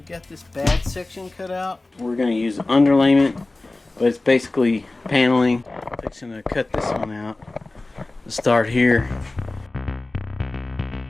got this bad section cut out. We're going to use underlayment, but it's basically paneling. I'm fixing to cut this one out. Let's start here.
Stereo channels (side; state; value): right; quieter; 3.0 dB